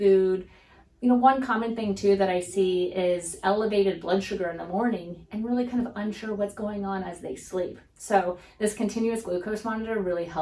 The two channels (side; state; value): both; identical; correlation 1.00